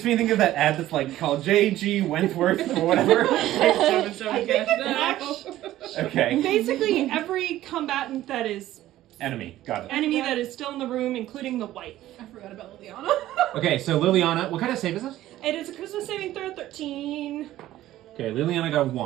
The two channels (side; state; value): left; quieter; 14.3 dB